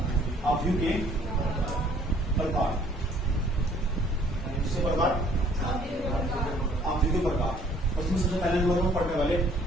आव्यूह के प्रकार, किसके प्रकार? आव्यूह के प्रकार। और इसमें सबसे पहले नंबर में पढ़ने वाले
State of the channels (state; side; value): normal; both; correlation 0.60